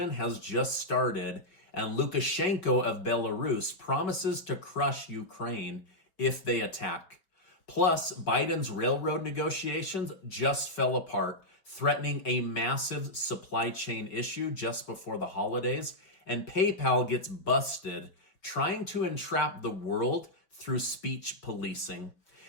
has just started, and Lukashenko of Belarus promises to crush Ukraine if they attack. Plus, Biden's railroad negotiations just fell apart, threatening a massive supply chain issue just before the holidays, and PayPal gets busted trying to entrap the world through speech policing.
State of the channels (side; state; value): right; late; 5.3 ms